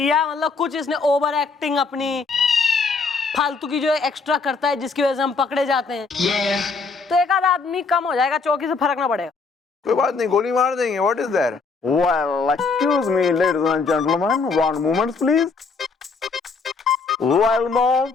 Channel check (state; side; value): quieter; right; 4.5 dB